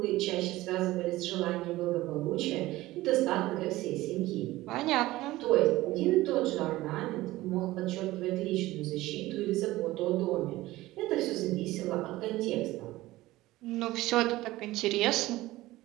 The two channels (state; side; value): quieter; left; 17.6 dB